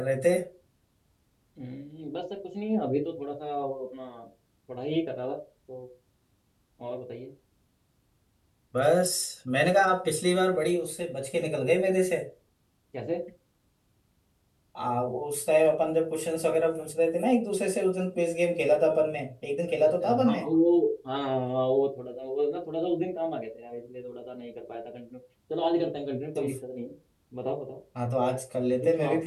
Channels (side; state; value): both; identical; correlation 1.00